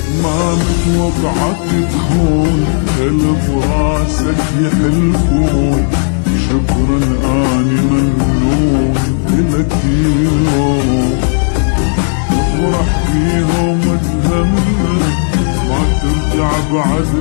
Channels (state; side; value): silent; right; digital silence